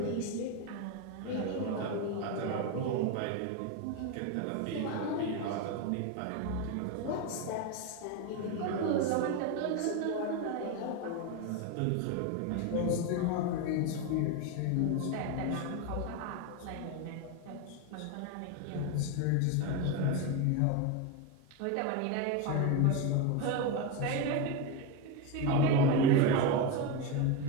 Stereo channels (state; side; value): different; both; correlation 0.03